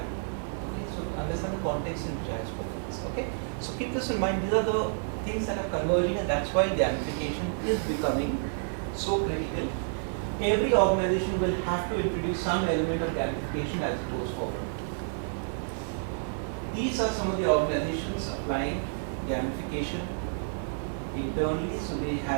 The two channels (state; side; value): silent; left; digital silence